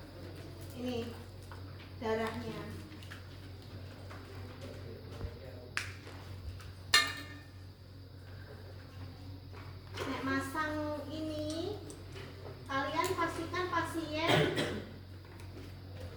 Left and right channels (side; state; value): both; identical; correlation 1.00